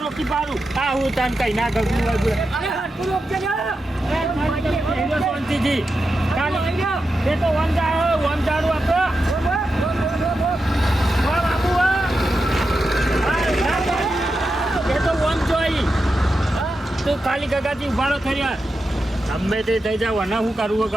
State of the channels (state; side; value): normal; both; correlation 0.89